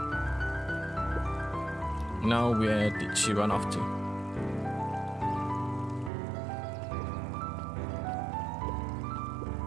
Now where did she run off to?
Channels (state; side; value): drops out; left; at 6.1 s